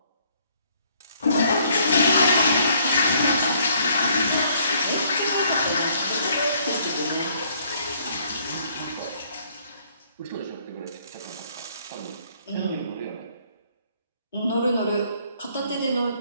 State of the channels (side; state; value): both; inverted; correlation -0.65